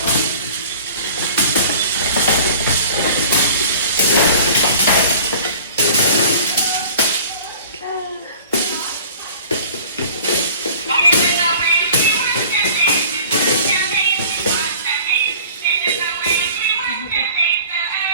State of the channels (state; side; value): inverted; both; correlation -0.46